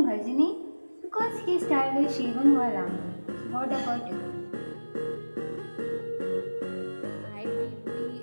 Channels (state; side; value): inverted; both; correlation -1.00